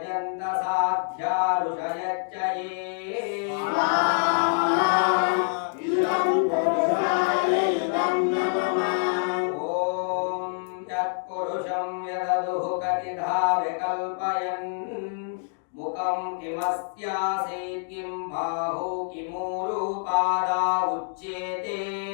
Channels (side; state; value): right; silent; digital silence